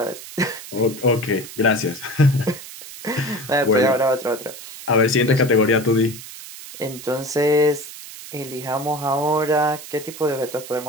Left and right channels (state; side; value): noise; right; hiss, 14 dB below the sound